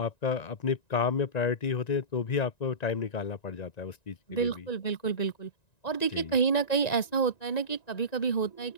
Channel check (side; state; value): right; late; 1.9 ms